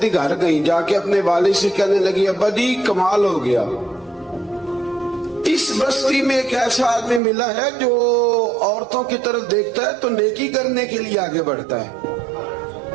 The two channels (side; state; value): left; drops out; at 7.2 s